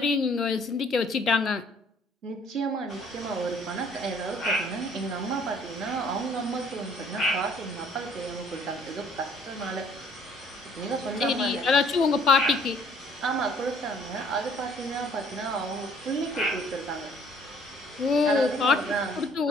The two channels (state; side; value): normal; both; correlation 0.59